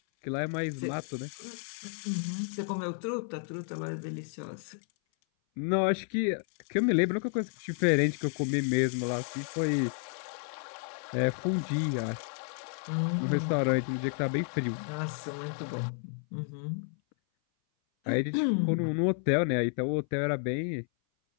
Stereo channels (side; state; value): right; silent; 57 dB below the other